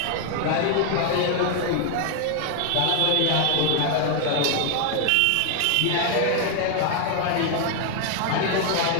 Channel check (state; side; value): different; both; correlation 0.00